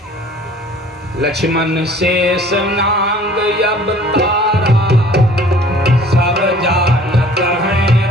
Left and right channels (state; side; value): normal; both; correlation 0.51